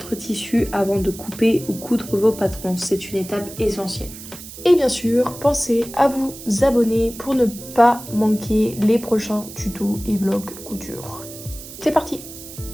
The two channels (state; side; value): noise; right; hiss, 14 dB below the sound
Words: tissu avant de couper ou coudre vos patrons. C'est une étape essentielle. Et bien sûr, pensez à vous abonner pour ne pas manquer les prochains tutos et vlogs couture. C'est parti!